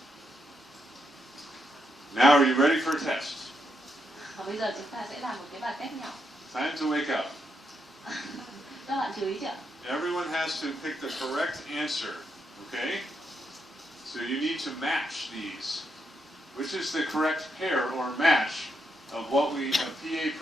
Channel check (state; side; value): normal; both; correlation 0.81